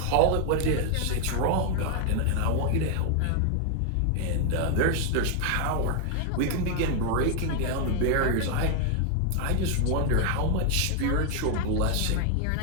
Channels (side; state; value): both; different; correlation 0.00